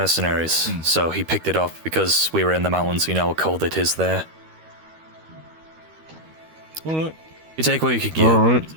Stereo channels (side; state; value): left; late; 13 ms